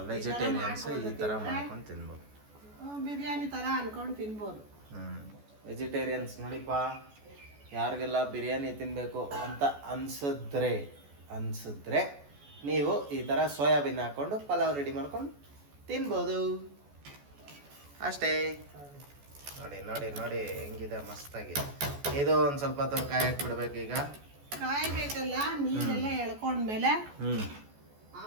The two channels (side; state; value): left; late; 14 ms